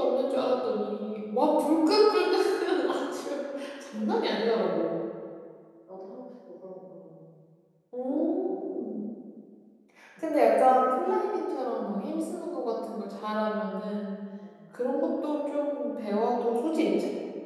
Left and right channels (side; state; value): both; identical; correlation 1.00